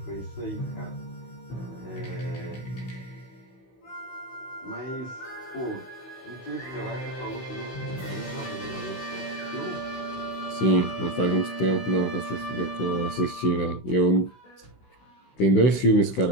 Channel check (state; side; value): late; right; 16 ms